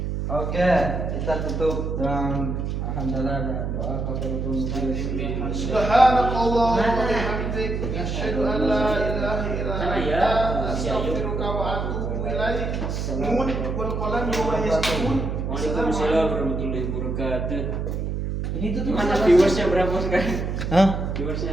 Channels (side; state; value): right; noise; hum, 2 dB below the sound